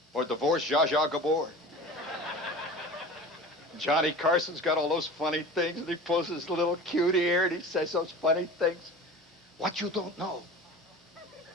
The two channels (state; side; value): normal; both; correlation 0.36